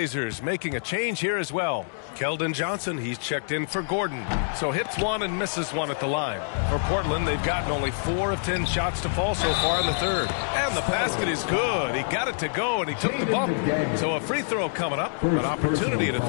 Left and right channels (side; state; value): right; silent; digital silence